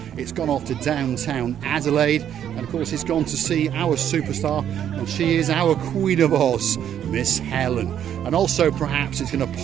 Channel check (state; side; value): quieter; left; 9.8 dB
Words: it's gone off to downtown Adelaide, and of course it's gone to see our superstar, and she is our Queen of Oz, Miss Helen. And also perhaps it's going to